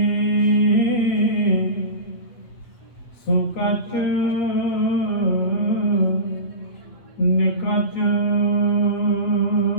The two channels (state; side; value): late; right; 8.1 ms